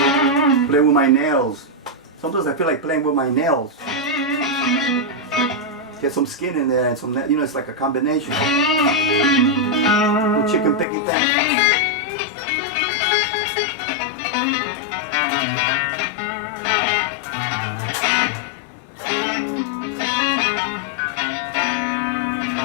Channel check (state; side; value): drops out; right; at 10.9 s